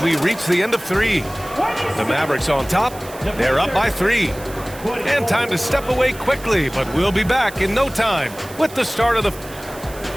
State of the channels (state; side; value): noise; right; hiss, 18 dB below the sound